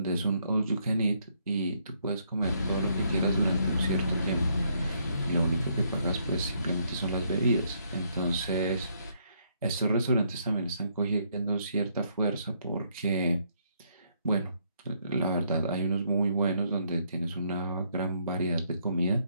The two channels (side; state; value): both; inverted; correlation -0.71